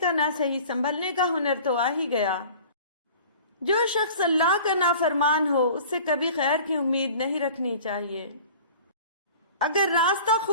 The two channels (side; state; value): both; inverted; correlation -0.44